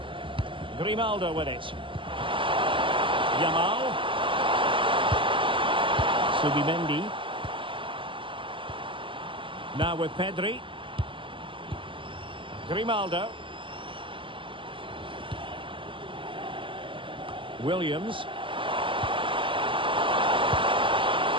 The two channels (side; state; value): left; late; 0.25 ms